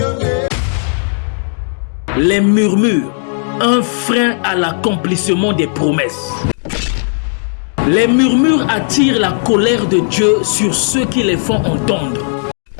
Les murmures, un frein à l'accomplissement des promesses. Les murmures attirent la colère de Dieu sur ceux qui les font entendre.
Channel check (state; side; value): silent; right; digital silence